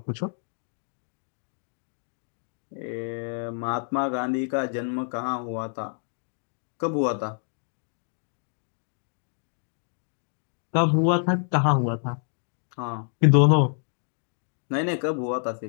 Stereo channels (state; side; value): silent; right; 59 dB below the other